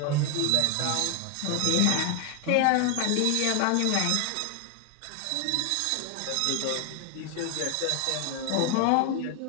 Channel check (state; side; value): different; both; correlation 0.01